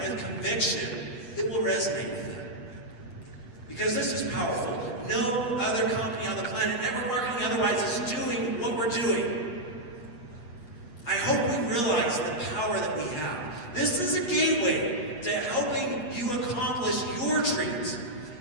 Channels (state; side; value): late; right; 8.3 ms